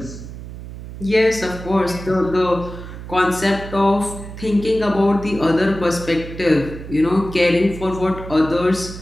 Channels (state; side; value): noise; right; hum, 12 dB below the sound